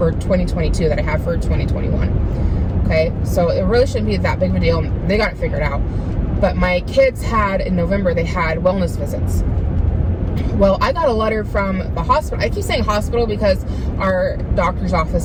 2022 that I have for 2021. Okay, so it really shouldn't be that big of a deal. They got it figured out. But my kids had, in November, they had wellness visits. Well, I got a letter from the hospital. I keep saying hospital because our doctor's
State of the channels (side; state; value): both; identical; correlation 1.00